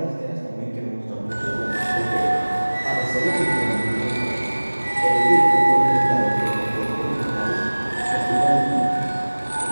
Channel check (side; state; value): both; inverted; correlation -1.00